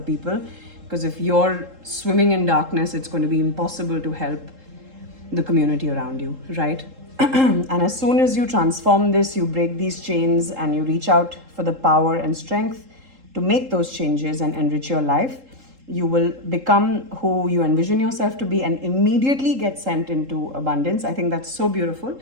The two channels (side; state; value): left; late; 3.7 ms